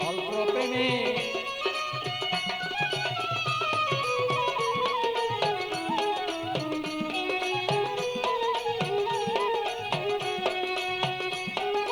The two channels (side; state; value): both; identical; correlation 1.00